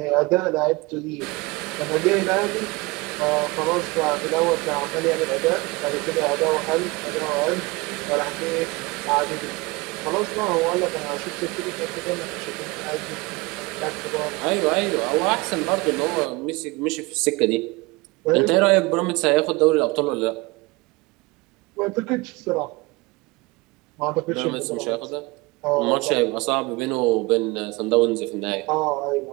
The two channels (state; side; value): quieter; left; 24.3 dB